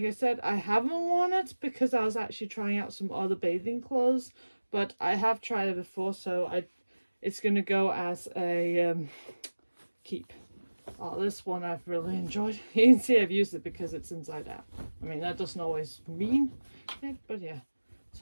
I said, I haven't worn it because I was actually trying out some other bathing clothes, but I have tried it before, so it's gonna go as a keep. Oh, this one I've really enjoyed. You can see I've used it because it's inside out. I mean, that doesn't always mean it, but yeah.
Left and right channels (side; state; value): both; inverted; correlation -1.00